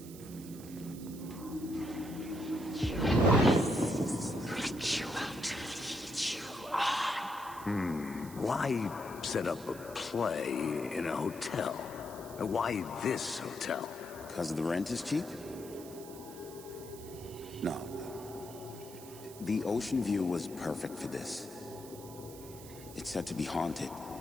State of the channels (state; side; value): noise; right; hiss, 16 dB below the sound